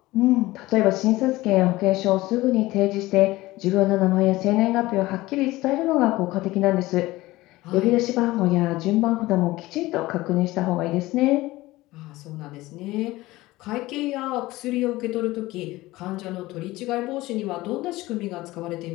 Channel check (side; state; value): right; quieter; 18.6 dB